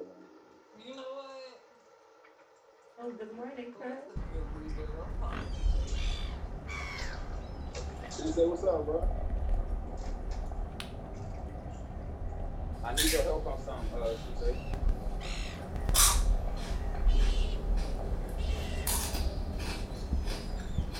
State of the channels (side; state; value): both; identical; correlation 1.00